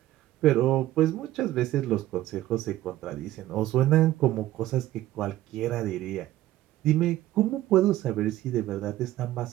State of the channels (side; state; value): left; quieter; 14.9 dB